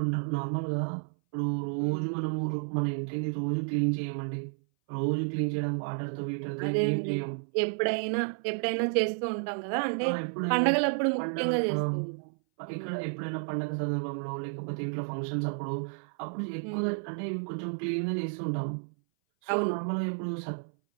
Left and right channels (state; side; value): silent; left; 57 dB below the other